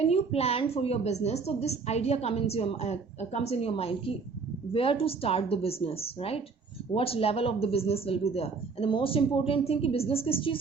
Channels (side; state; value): left; quieter; 4.8 dB